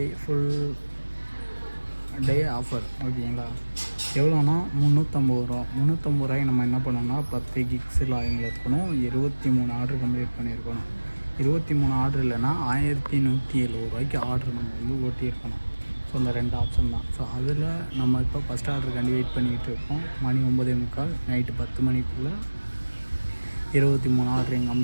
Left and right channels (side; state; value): both; inverted; correlation -1.00